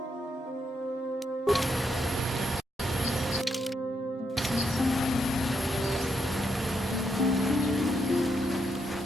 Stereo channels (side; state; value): both; normal; correlation 0.79